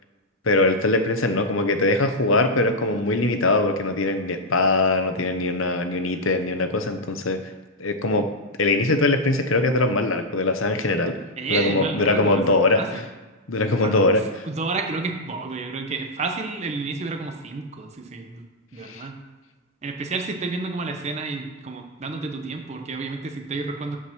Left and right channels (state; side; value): normal; both; correlation -0.02